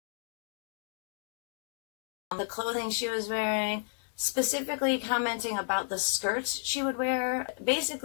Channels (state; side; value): silent; right; digital silence